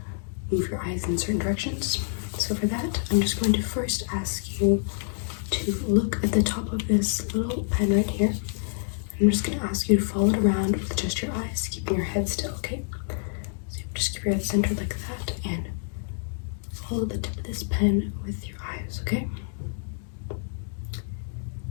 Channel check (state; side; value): silent; right; digital silence